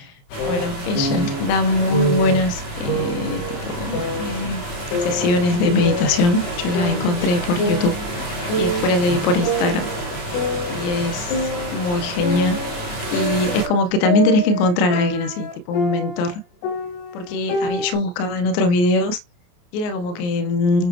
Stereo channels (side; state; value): right; late; 28 ms